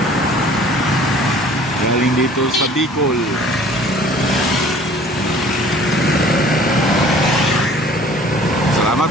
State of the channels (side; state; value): both; normal; correlation 0.51